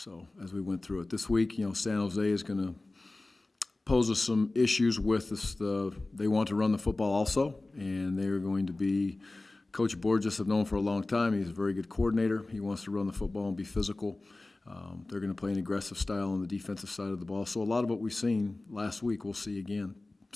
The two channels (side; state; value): right; quieter; 3.0 dB